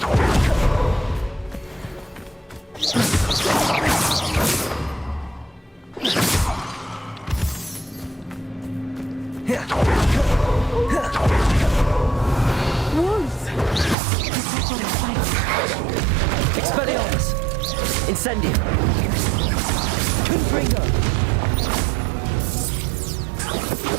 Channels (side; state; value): left; drops out; at 14.0 s